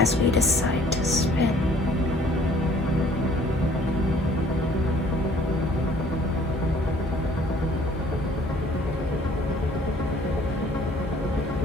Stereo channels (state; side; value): normal; both; correlation 0.56